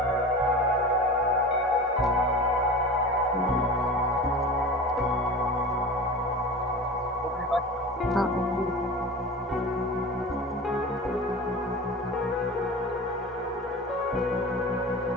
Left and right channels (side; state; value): both; normal; correlation 0.33